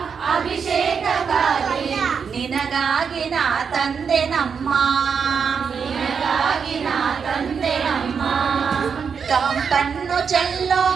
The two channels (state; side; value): quieter; left; 6.3 dB